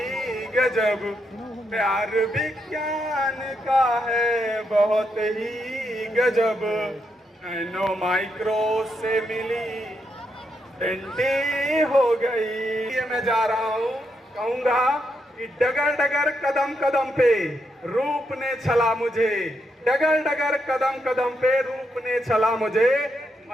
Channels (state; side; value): normal; both; correlation 0.80